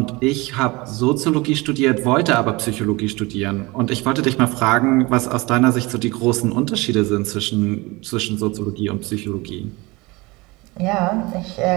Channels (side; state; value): left; quieter; 23.6 dB